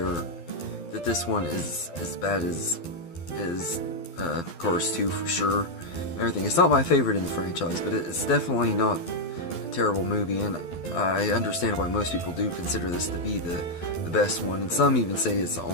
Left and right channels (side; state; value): right; late; 12 ms